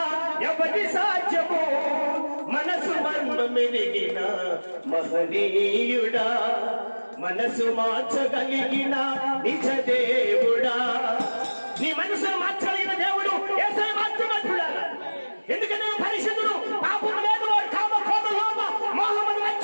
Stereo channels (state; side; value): inverted; both; correlation -1.00